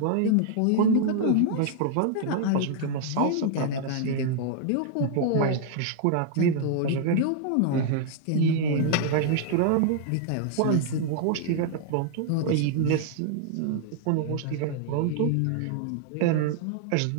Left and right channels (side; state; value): both; different; correlation 0.00